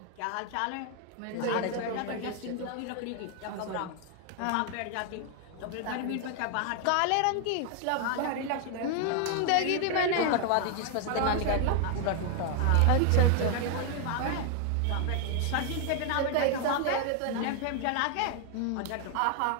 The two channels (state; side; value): different; both; correlation 0.00